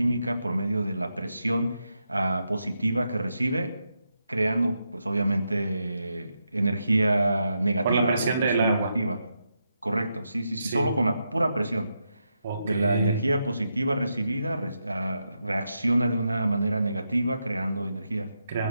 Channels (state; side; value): inverted; both; correlation -0.84